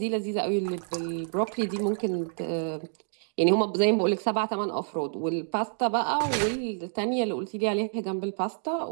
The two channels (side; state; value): left; silent; digital silence